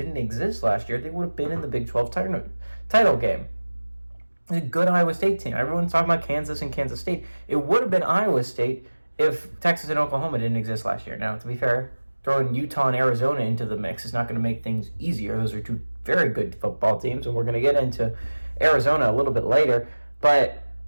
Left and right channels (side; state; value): both; inverted; correlation -1.00